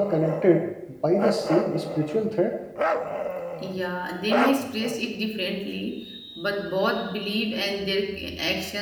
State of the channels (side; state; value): both; identical; correlation 1.00